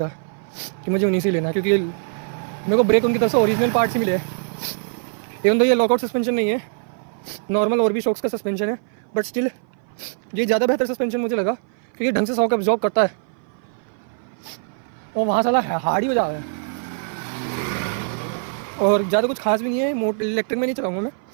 कि मुझे उन्हीं से लेना है, क्योंकि मेरे को ब्रेक उनकी तरफ से ओरिजिनल पार्ट से मिले हैं। इवन तो ये लॉकआउट सस्पेंशन नहीं है, नॉर्मल और भी शॉक्स का सस्पेंशन है, बट स्टिल ये ज़्यादा बेहतर सस्पेंशन मुझे लगा, क्योंकि ढंग से शॉक एब्जॉर्ब करता है। और वहाँ साला हार्ड ही बजा है, और ज़्यादा कुछ खास भी नहीं है। इलेक्ट्रिक में नहीं चलाऊँगा मैं।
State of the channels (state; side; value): silent; left; 57 dB below the other